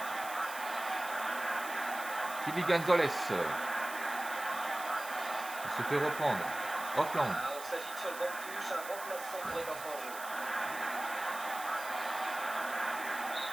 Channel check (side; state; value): right; noise; hiss, 12 dB below the sound